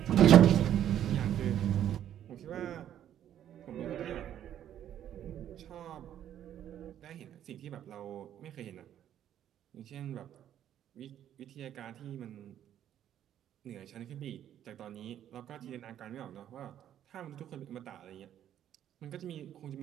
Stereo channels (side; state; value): left; quieter; 10.7 dB